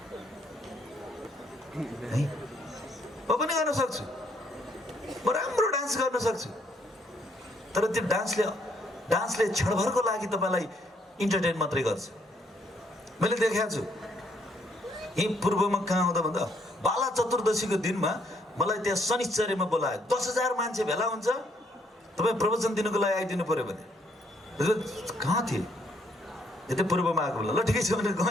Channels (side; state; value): both; normal; correlation 0.70